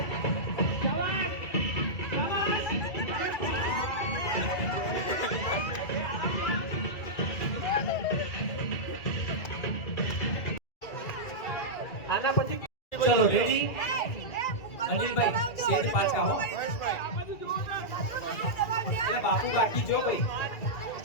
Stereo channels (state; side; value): late; right; 2.3 ms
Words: આના પછી ચલો રેડી અનિલભાઈ સેજ પાછા હો. એટલે બાપુ બાકી જો ભાઈ